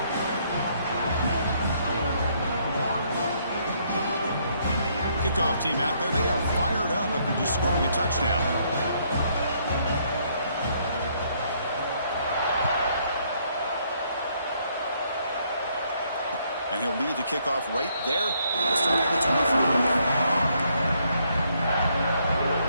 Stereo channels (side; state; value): both; inverted; correlation -0.70